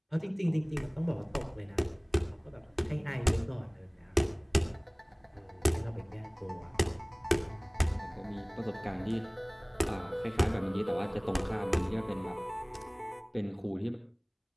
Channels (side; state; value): both; identical; correlation 1.00